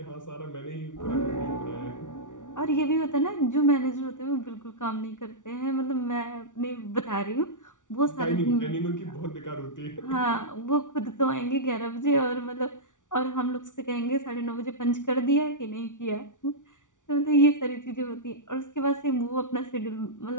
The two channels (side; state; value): right; late; 0.87 ms